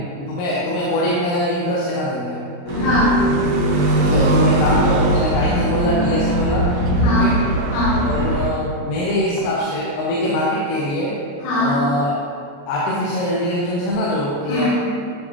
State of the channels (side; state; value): right; late; 28 ms